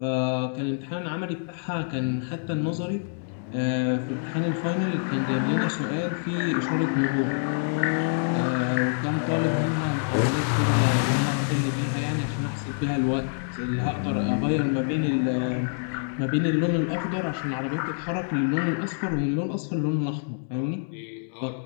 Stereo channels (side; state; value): right; silent; digital silence